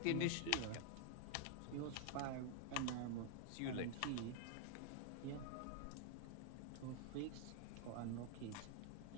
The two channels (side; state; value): both; different; correlation 0.00